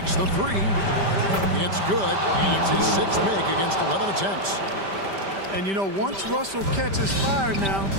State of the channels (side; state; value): left; late; 5.1 ms